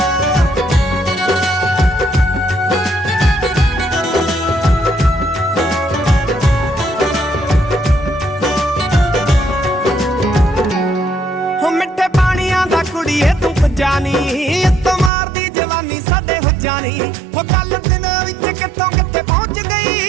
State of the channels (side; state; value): left; drops out; at 15.1 s